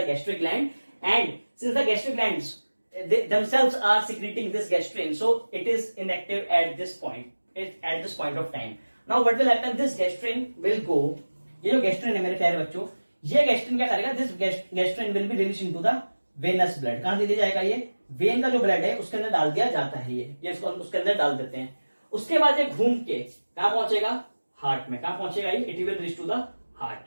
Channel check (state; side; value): inverted; both; correlation -1.00